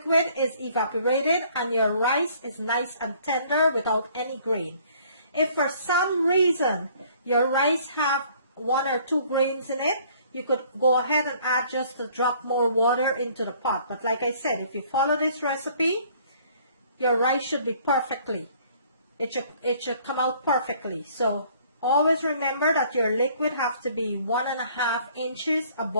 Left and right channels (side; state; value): both; inverted; correlation -0.58